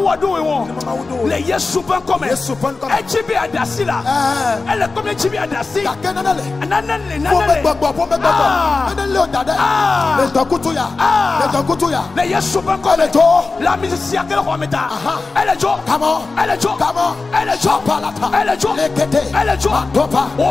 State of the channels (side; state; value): right; quieter; 3.9 dB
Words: do we won. Le yesu pen come. Echibi adasila. Ele come echibi adasi. Nanale. Le yesu pen come. La musicien que le roi meta. Elle est jo. Elle jo.